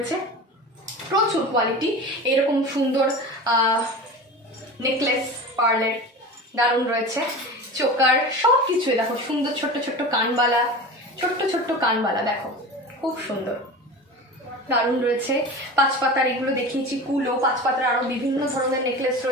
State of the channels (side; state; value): both; normal; correlation 0.32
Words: প্রচুর কোয়ালিটি, এরকম সুন্দর নেকলেস পার্লের দারুণ রয়েছে, চোকার সব কিছু। দেখো সুন্দর ছোট্ট ছোট্ট কানবালা, দেখো খুব সুন্দর, দারুণ রয়েছে। 5 পাতার এগুলো দেখিয়েছি, কুলো 5 পাতার আরো বিভিন্ন ধরনের নেকলেস